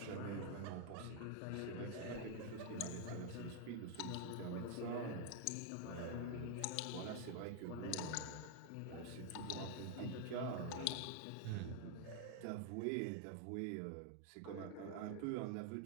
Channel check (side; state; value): both; different; correlation 0.00